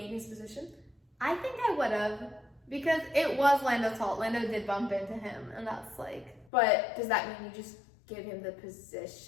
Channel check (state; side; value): drops out; right; at 6.5 s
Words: his position? I think I would have. Because it was Lando's fault. Lando did bump into him, and that's like... But does that mean you just give him the